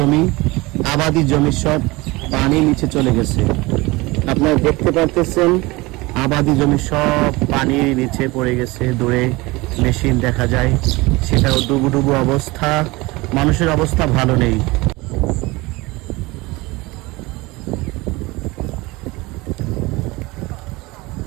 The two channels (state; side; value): quieter; left; 22.4 dB